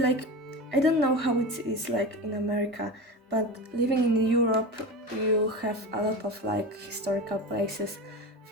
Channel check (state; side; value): normal; both; correlation 0.26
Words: like, I don't know how it is like in America, but living in Europe, you have a lot of like historical places.